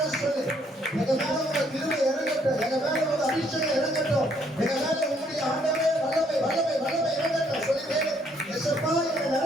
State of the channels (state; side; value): normal; both; correlation 0.67